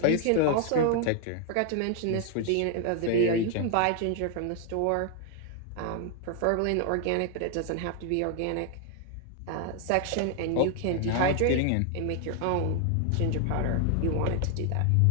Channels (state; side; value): different; both; correlation 0.00